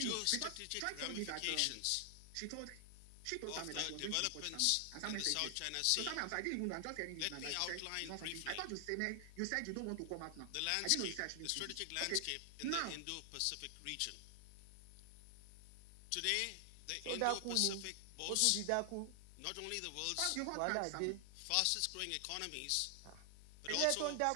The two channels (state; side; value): different; both; correlation 0.00